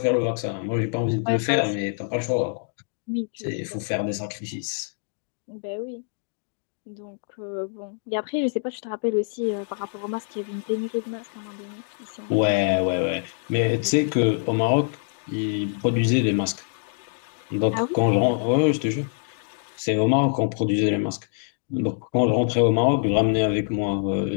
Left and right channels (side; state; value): right; silent; 62 dB below the other